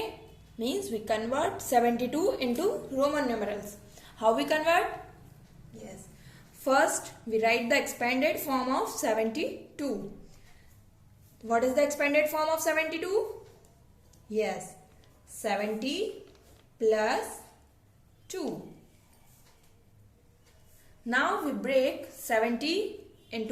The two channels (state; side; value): identical; both; correlation 1.00